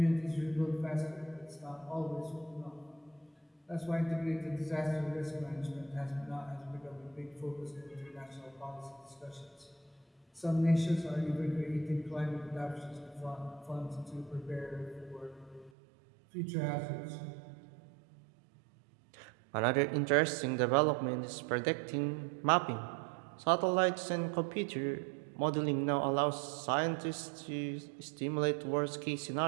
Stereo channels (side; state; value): left; drops out; at 15.7 s